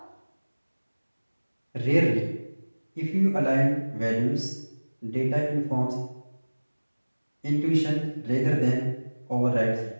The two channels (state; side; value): inverted; both; correlation -1.00